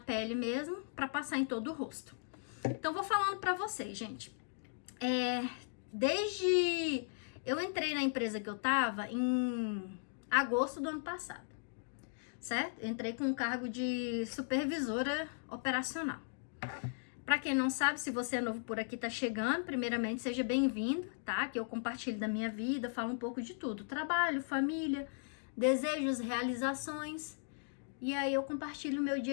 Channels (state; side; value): silent; right; digital silence